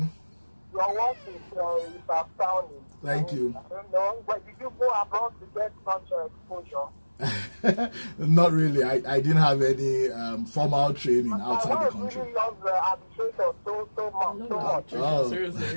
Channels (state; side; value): inverted; both; correlation -1.00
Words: Your work is astounding. Thank you. I don't know, but did you go abroad to get such exposure? Not really. I didn't have any formal training outside the country. I really love arbitration so much. Oh. Seriously,